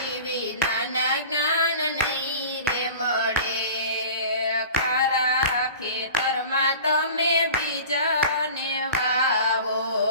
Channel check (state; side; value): inverted; both; correlation -0.39